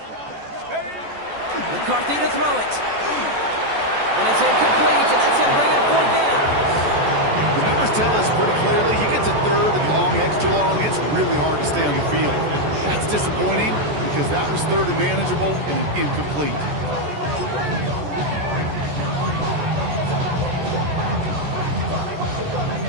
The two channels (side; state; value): left; late; 14 ms